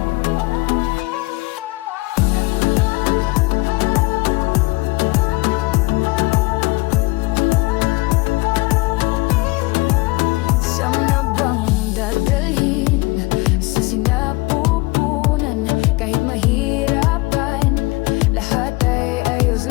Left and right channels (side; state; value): right; quieter; 23.0 dB